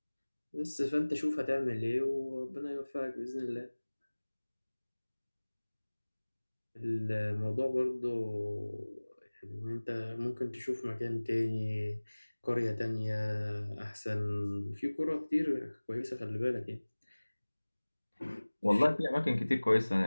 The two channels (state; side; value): inverted; both; correlation -1.00